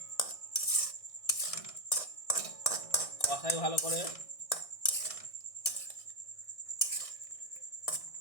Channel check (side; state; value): right; late; 1.6 ms